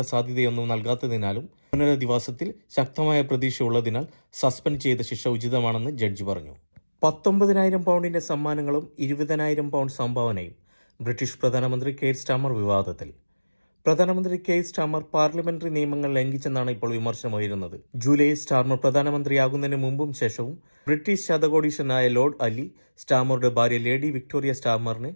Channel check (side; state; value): both; inverted; correlation -1.00